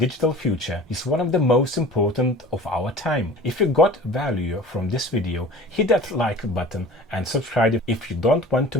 future, is one of the most important of our time. If you got value from this video, hit that like button and subscribe if you don't want to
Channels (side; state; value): both; normal; correlation 0.41